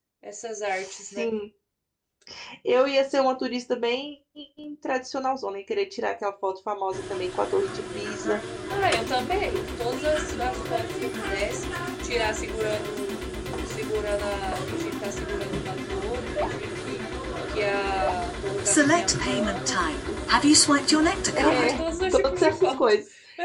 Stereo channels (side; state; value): both; identical; correlation 1.00